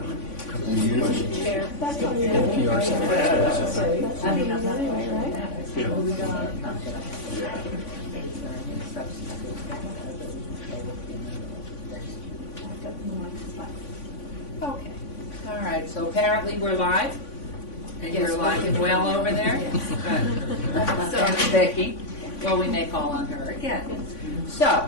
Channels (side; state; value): right; late; 3.5 ms